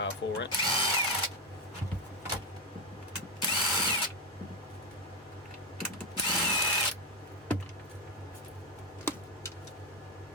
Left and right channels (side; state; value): both; normal; correlation 0.10